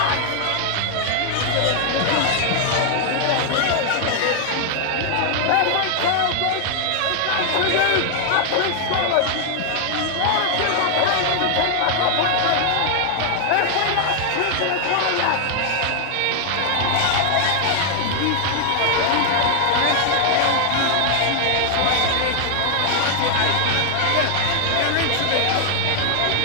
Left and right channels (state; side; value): different; both; correlation 0.00